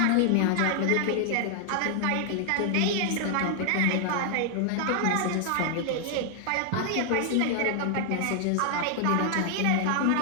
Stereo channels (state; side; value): different; both; correlation 0.00